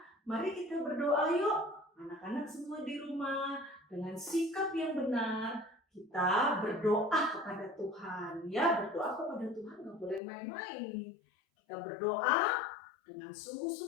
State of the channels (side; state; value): right; drops out; at 10.2 s